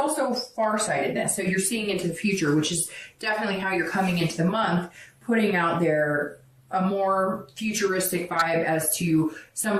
farsightedness. So you're seeing into the future, which is definitely how you're coming into the month, putting out there a more futuristic vibe as to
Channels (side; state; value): both; identical; correlation 1.00